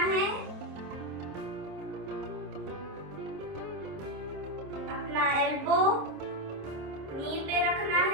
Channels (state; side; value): late; left; 26 ms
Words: है। अपना एल्बो नी पे रखना